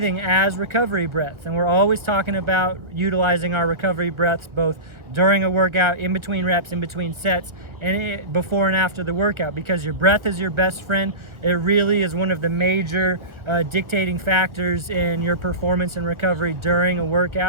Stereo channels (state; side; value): late; left; 1.3 ms